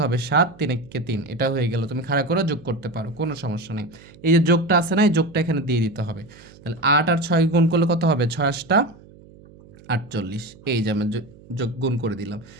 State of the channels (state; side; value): noise; right; hum, 23 dB below the sound